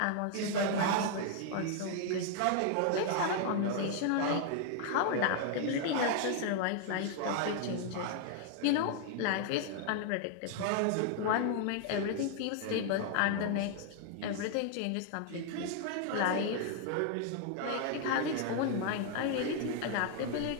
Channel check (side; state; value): both; different; correlation 0.00